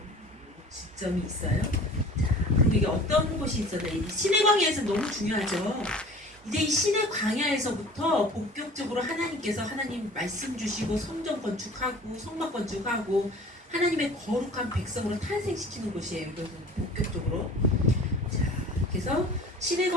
지점이 있어요. 자, 그리고 이게 어떤 곳이 있었나? 이 신의 광야에서 너무 중요하죠. 이제 이 신의 광야에서부터 본격적으로 하나님께서 하나님 말씀 주시고 성전 건축하고 성막 건축하고 하나님의 거룩한 백성으로 탄생시키는 곳이에요. 이것은 본격적으로. 자, 그래서 신의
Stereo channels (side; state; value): both; normal; correlation 0.44